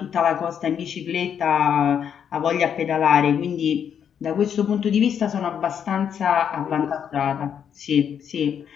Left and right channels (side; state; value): right; quieter; 8.2 dB